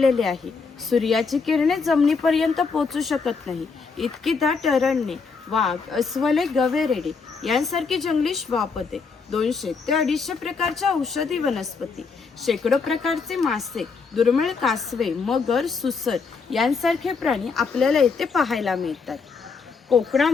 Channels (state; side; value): quieter; right; 4.9 dB